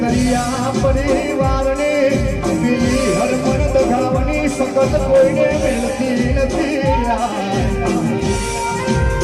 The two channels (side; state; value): both; identical; correlation 1.00